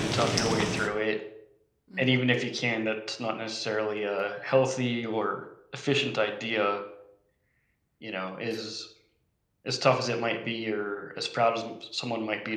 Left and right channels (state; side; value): identical; both; correlation 1.00